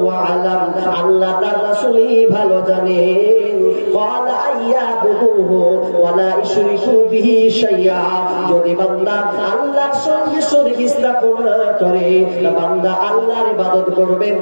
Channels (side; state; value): both; inverted; correlation -1.00